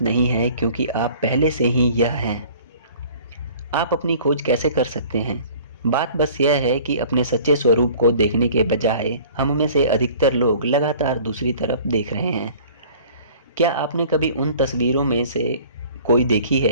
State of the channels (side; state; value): both; inverted; correlation -0.49